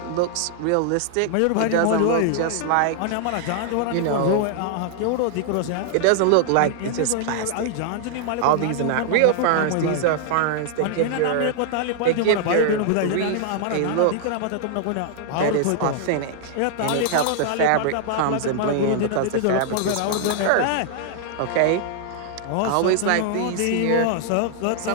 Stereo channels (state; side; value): different; both; correlation -0.01